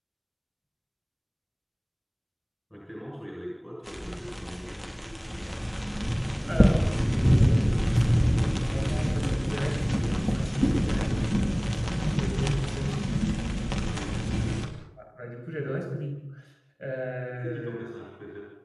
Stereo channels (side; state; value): both; identical; correlation 1.00